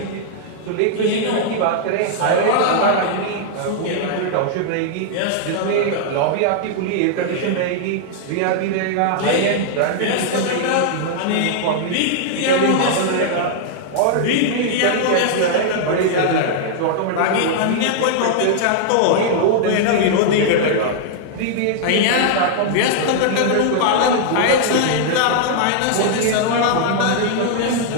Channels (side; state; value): both; different; correlation -0.01